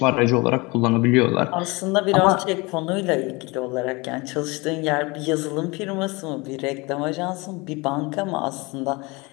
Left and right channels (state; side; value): quieter; right; 25.6 dB